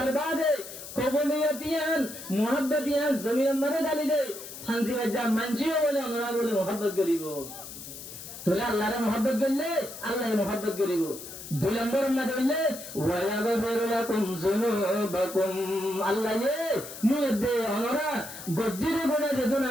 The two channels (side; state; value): left; noise; hiss, 12 dB below the sound